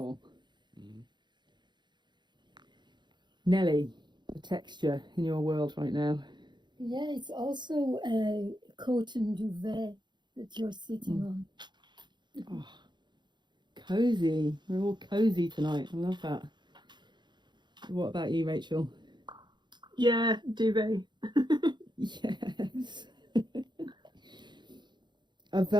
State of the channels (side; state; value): left; late; 0.22 ms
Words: Mm-hmm. Nelly, the texture in your world right now. Yeah, it's also a cotton duvet that you're sitting on. Oh, cozy. We're all cozy tonight. I love that. What about you, Rachel? Yeah, duvet. Yes. A